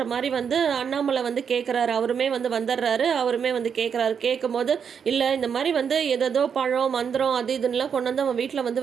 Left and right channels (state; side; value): quieter; left; 7.1 dB